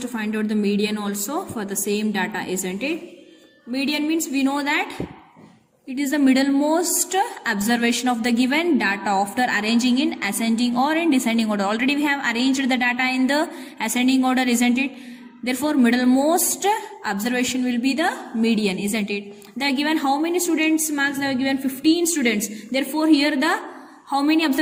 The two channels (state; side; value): identical; both; correlation 1.00